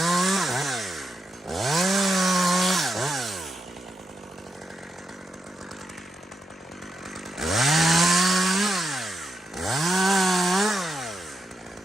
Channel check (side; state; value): both; normal; correlation 0.84